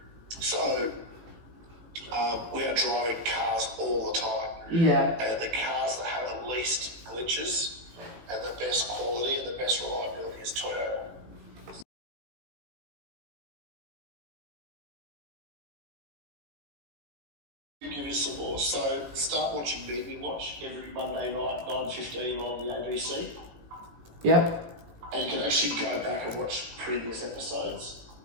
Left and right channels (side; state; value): left; late; 18 ms